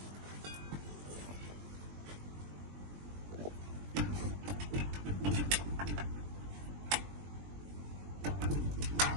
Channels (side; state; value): left; late; 21 ms